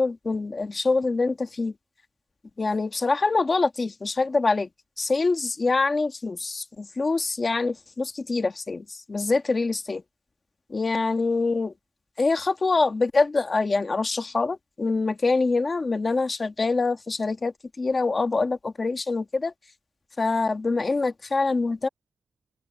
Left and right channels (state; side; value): quieter; right; 3.2 dB